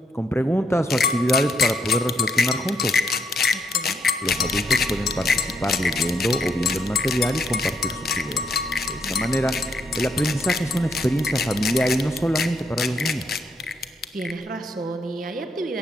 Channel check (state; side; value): normal; both; correlation 0.75